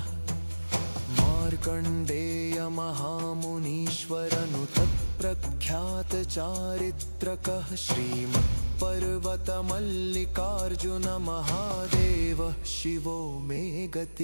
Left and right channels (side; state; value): both; inverted; correlation -1.00